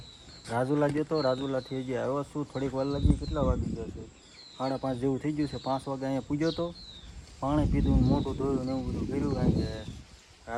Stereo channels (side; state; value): both; identical; correlation 1.00